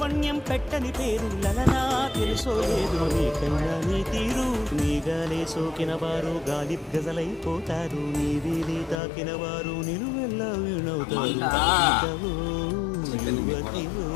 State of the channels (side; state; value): right; drops out; at 9.0 s